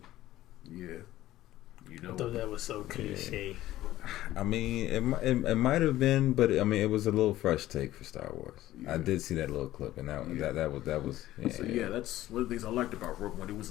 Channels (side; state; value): right; quieter; 14.9 dB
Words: Yeah, you know. I thought that was so cliche. I mean, it might have been, but I mean, it was a little fresh take for Star Wars. Yeah. I did see that little clip, and that was. Yeah, so, that's one of the things I liked about Rogue One. It was